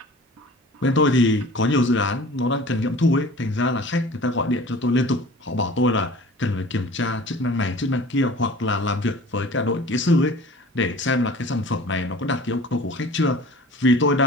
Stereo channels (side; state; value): both; normal; correlation 0.43